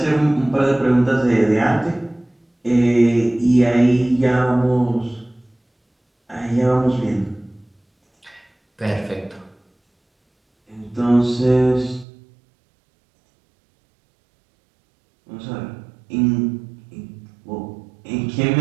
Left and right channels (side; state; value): left; drops out; at 12.1 s